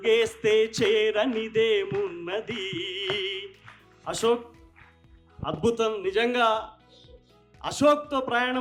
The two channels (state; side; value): identical; both; correlation 1.00